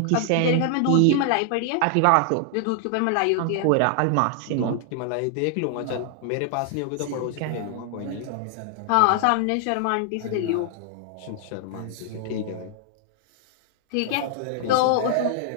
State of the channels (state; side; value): different; both; correlation 0.00